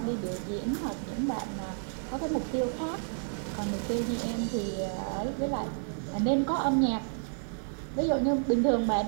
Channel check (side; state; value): left; silent; digital silence